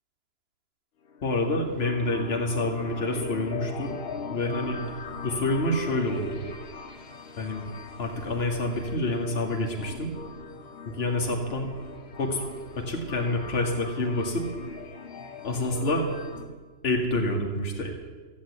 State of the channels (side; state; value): right; late; 2.9 ms